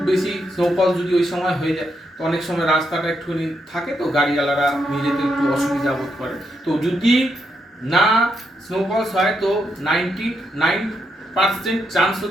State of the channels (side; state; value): both; normal; correlation 0.81